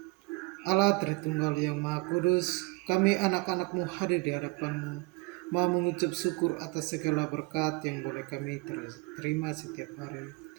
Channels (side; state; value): left; quieter; 27.3 dB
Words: Allah Tritunggal yang Maha Kudus, kami anak-anak-Mu hadir di hadapan-Mu, mau mengucap syukur atas segala berkat yang boleh kami terima setiap hari